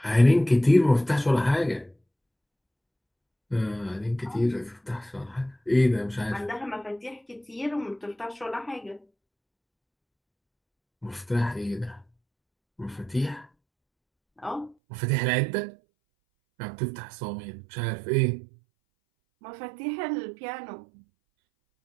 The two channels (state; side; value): drops out; left; at 14.8 s